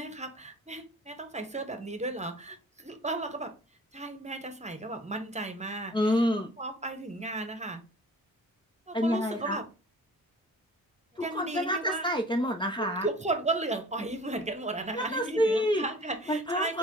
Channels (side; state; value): both; normal; correlation 0.46